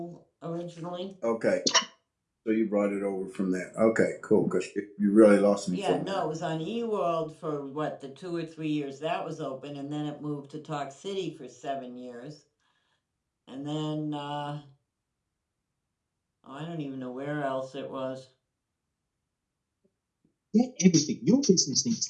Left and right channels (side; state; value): both; identical; correlation 1.00